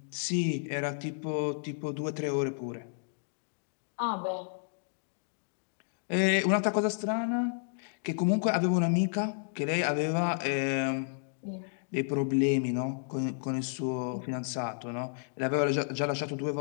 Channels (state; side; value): silent; right; digital silence